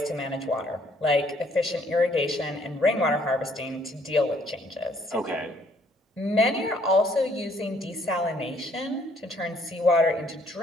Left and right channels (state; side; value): normal; both; correlation 0.65